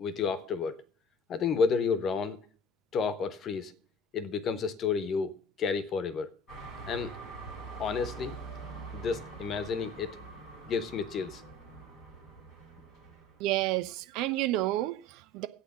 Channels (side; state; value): both; normal; correlation 0.44